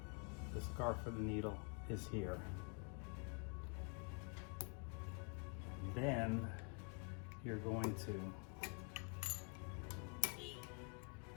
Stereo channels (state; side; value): quieter; right; 39.4 dB